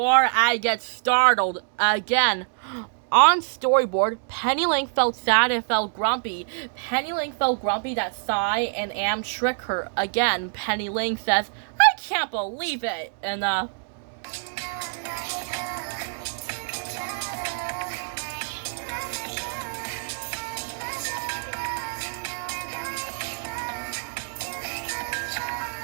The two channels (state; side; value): silent; left; digital silence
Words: I get startled again. On storyboard, Penny Link felt sad and felt grumpy. Penny Link felt grumpy that Sai and Am trick her again. Penny Link says, I can't believe it. And